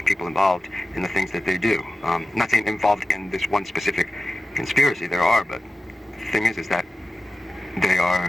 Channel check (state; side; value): normal; both; correlation 0.94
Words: people involved in the things that they do. I'm not saying involved in this one specific conspiracy, there are, but the thing is that they